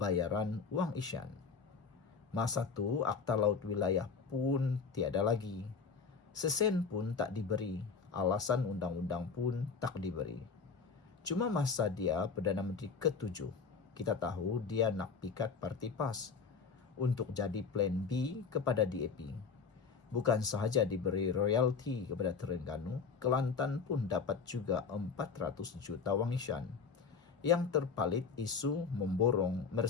Wang Ishan. Masa tu Akta Laut Wilayah pun tiada lagi. Sesen pun tak diberi, alasan undang-undang pun tak diberi. Cuma masa dia Perdana Menteri ke-7, kita tahu dia nak pikat parti PAS untuk jadi plan B kepada DAP. Bukan sahaja diberi royalti kepada Terengganu, Kelantan pun dapat juga 400 juta Wang Ishan. Yang terpalit isu memborong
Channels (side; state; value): right; quieter; 5.4 dB